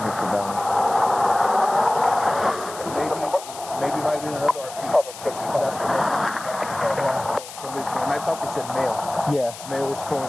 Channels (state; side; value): noise; left; hiss, 14 dB below the sound